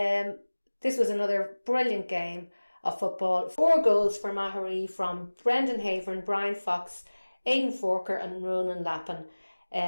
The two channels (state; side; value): inverted; both; correlation -1.00